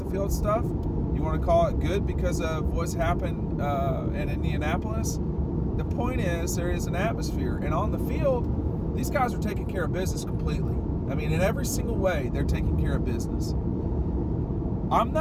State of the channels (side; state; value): both; identical; correlation 1.00